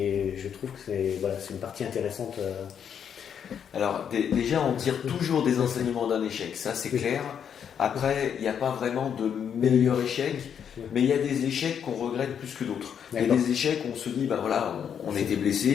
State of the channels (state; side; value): quieter; right; 8.1 dB